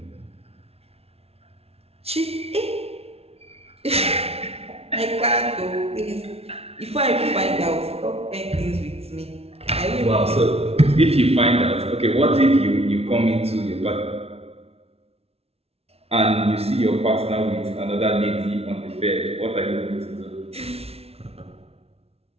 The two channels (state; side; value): late; left; 0.30 ms